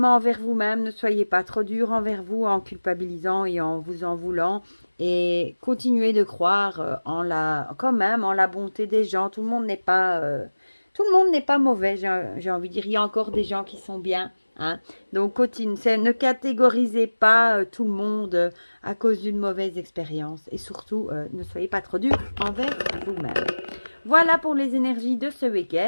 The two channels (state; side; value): inverted; both; correlation -1.00